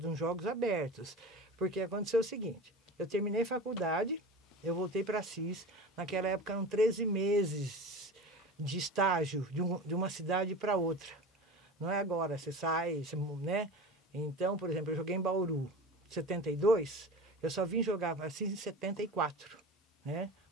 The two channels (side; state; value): both; normal; correlation 0.33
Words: Jogos Abertos. Porque aconteceu o seguinte, eu terminei faculdade, eu voltei para Assis. Naquela época eram 13 meses de estágio de uma cidade para outra. Não é agora, você sai, né? Então, por exemplo, eu joguei em Bauru em 72, eu só vim jogar para Assis em 74, né?